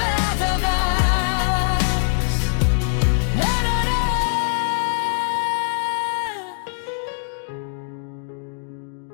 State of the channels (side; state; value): right; silent; digital silence